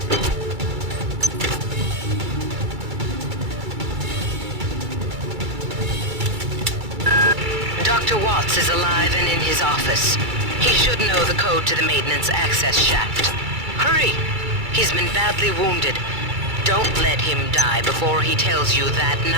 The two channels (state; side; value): late; left; 2.3 ms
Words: Dr. Watts is alive and in his office. He should know the code to the maintenance access shaft. Hurry! He's been badly wounded. Don't let him die before he tells you that